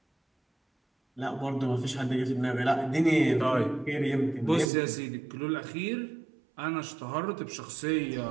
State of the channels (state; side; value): drops out; left; at 4.7 s